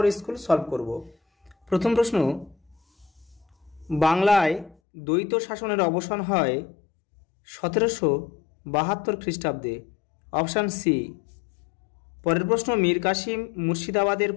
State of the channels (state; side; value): drops out; right; at 4.8 s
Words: স্কুল সলভ করব। প্রথম প্রশ্ন, বাংলায় দ্বৈত শাসনের অবসান হয় 1772 খ্রিস্টাব্দে। Option C. পরের প্রশ্ন, মীর কাসিম মুর্শিদাবাদের